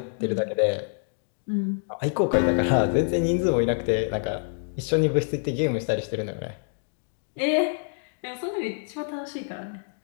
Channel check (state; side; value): silent; right; digital silence